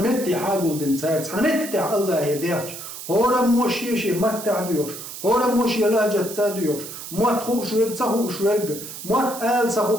حاجول دنسار سنمتي الله يديرش هورم موشي شي متع ديوش هورم موشي لاجة تاديوش موت خوش ويب تخوش ورق موت آل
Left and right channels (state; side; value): noise; right; hiss, 10 dB below the sound